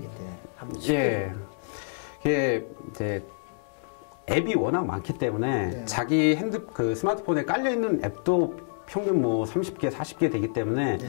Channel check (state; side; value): silent; right; digital silence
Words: 이게 이제 앱이 워낙 많기 때문에 자기 스마트폰에 깔려 있는 앱도 평균 뭐 30개, 40개 되기 때문에